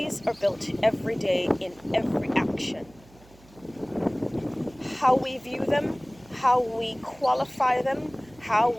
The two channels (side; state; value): right; noise; hum, 26 dB below the sound